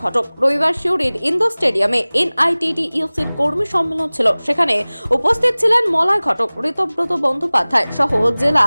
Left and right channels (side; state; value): both; inverted; correlation -1.00